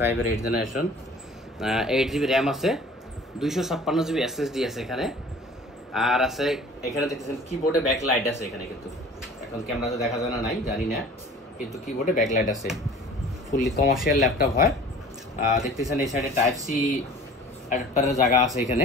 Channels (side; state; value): both; normal; correlation 0.46